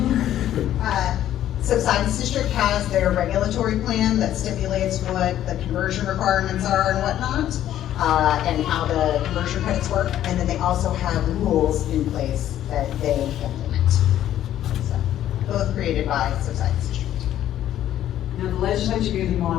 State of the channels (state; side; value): quieter; right; 11.9 dB